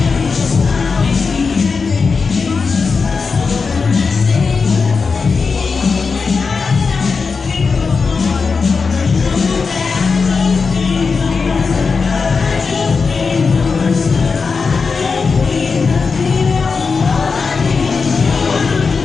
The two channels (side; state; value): right; quieter; 4.9 dB